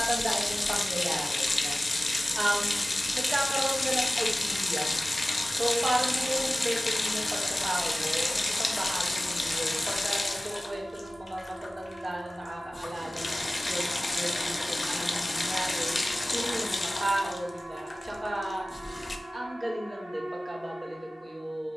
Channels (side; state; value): both; normal; correlation 0.96